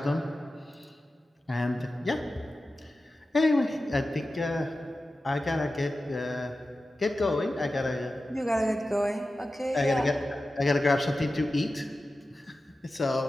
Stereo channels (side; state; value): both; normal; correlation 0.94